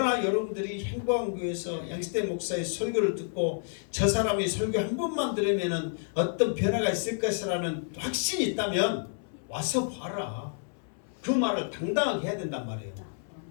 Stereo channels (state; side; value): silent; right; 58 dB below the other